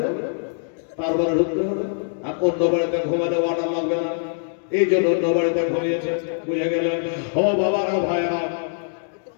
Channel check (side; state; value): right; silent; digital silence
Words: তারপরে ঢুকতে হবে। আর অন্য বাড়িতে ঘুমালে অর্ডার লাগবে না, এই জন্য অন্য বাড়িতে ঘুমিয়েছে। বুঝে গেলেন? ও বাবারা, ভাইরা,